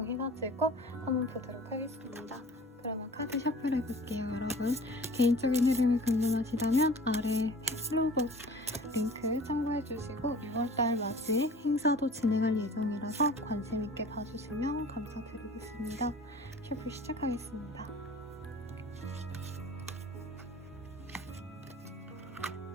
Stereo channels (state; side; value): normal; both; correlation 0.44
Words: 한번 보도록 하겠습니다. 그러면 카드 셔플 해볼게요. 여러분 개인적인 흐름이 궁금하시다면 아래 플로그 링크 참고해주시고 6월달 맞이 행사도 진행할 예정이라서 관심있게 봐주시면 감사드리겠습니다. 셔플 시작하겠습니다.